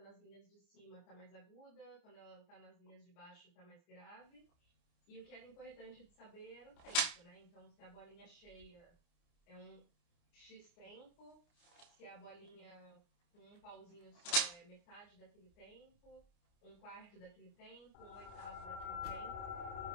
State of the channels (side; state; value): right; late; 29 ms